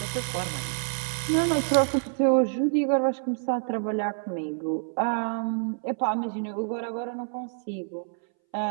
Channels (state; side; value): silent; left; 60 dB below the other